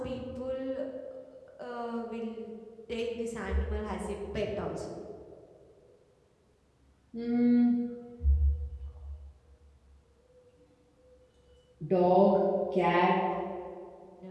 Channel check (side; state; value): both; identical; correlation 1.00